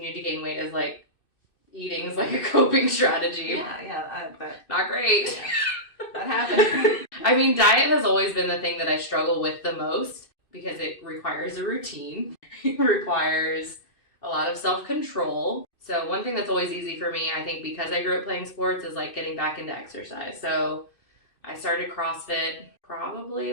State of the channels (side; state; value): right; late; 2.6 ms